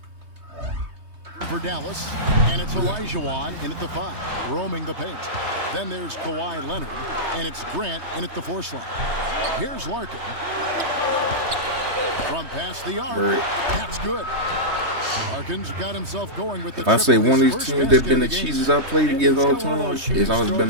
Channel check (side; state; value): left; late; 3.2 ms